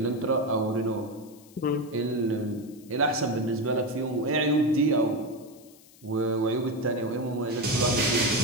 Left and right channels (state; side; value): noise; left; hiss, 25 dB below the sound